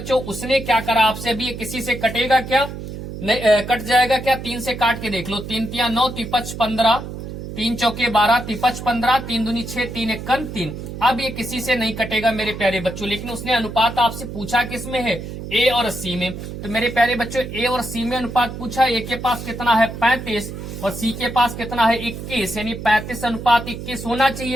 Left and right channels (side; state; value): right; noise; hum, 9 dB below the sound